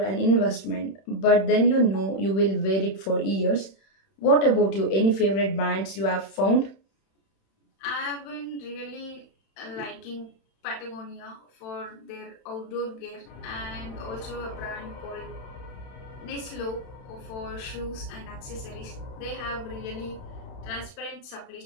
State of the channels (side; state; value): right; late; 31 ms